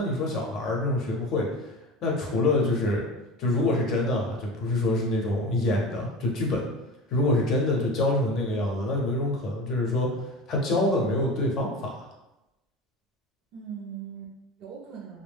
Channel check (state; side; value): normal; both; correlation 0.31